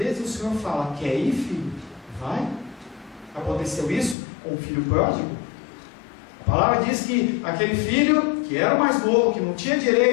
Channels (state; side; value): drops out; right; at 4.2 s